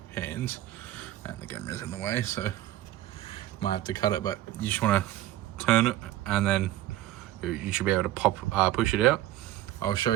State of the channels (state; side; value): quieter; left; 14.5 dB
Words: 2 hands, and the camera's in the way, so might have to cut it. But you just want to turn it, and then you should be able to push it out. I'll show